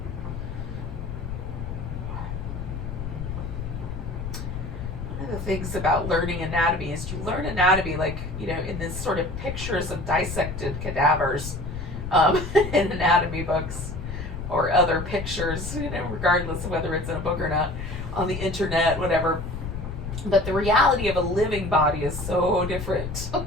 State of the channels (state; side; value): noise; left; rumble, 7 dB below the sound